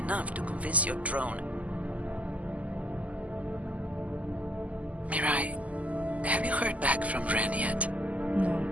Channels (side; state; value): left; late; 0.072 ms